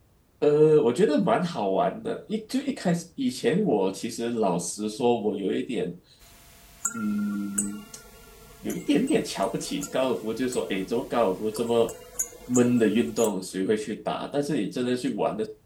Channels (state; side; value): identical; both; correlation 1.00